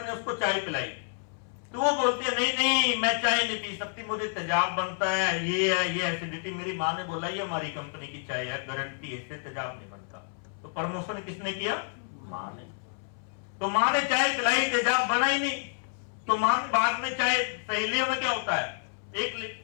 ने उसको चाय पिलाई। तो वो बोलती है नहीं नहीं मैं चाय नहीं पी सकती, मुझे तेजाब बनता है, ये एसिडिटी। मेरी माँ ने बोला ये हमारी कंपनी की चाय है, गारंटी है, इससे तेजाब नहीं बनता। तो प्रमोशन किसने किया? माँ ने। तो माँ ने चाय पिलाई, तेजाब बना ही नहीं। तो माँ बाद में चाय सहेलियों में क्या होता है, एक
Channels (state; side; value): silent; right; 58 dB below the other